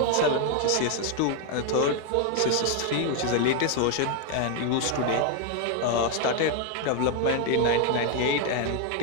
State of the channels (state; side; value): different; both; correlation 0.01